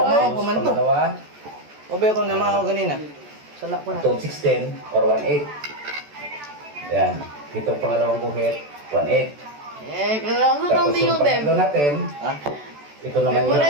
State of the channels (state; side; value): late; left; 14 ms